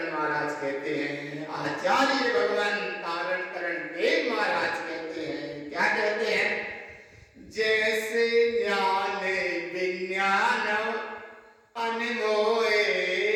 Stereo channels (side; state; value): both; identical; correlation 1.00